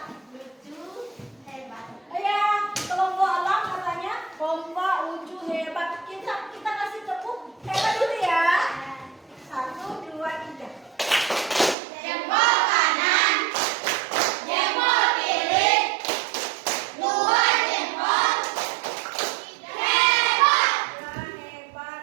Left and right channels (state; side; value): drops out; left; at 11.8 s